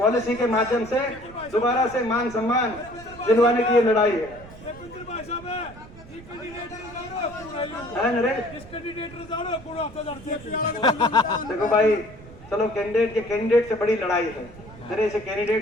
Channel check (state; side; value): noise; right; rumble, 18 dB below the sound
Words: के माध्यम से दोबारा से मान सम्मान दिलवाने की ये लड़ाई है। देखो भाई, चलो कैंडिडेट से बड़ी लड़ाई है, मेरे से